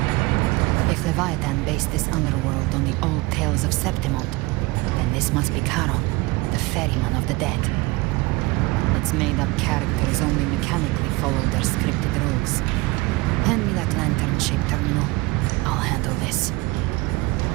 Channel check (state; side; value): quieter; left; 23.0 dB